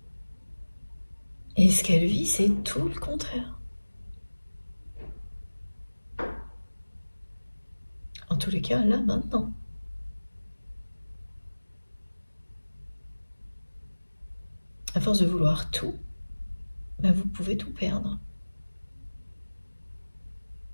Et ce qu'elle vit, c'est tout le contraire. En tous les cas, là, maintenant. À force de vouloir tout, vous pouvez tout perdre.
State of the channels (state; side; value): inverted; both; correlation -1.00